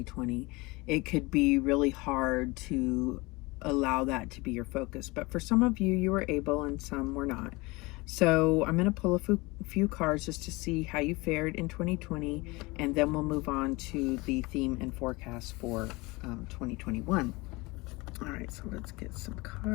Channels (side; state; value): right; quieter; 23.8 dB